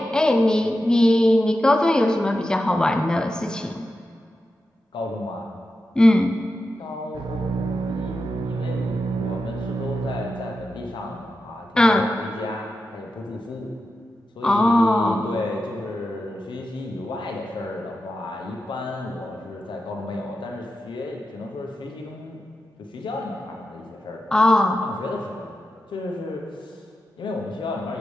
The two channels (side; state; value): both; normal; correlation 0.90